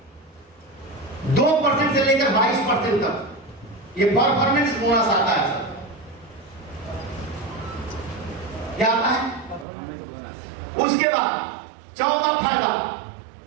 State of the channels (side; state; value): left; drops out; at 9.7 s